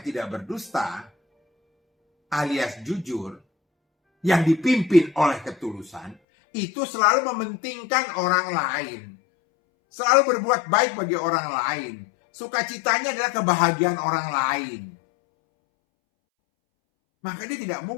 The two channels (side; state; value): right; drops out; at 6.2 s